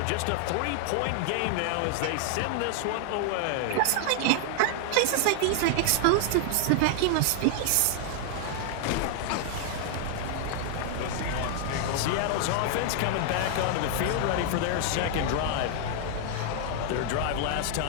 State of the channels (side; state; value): both; different; correlation 0.00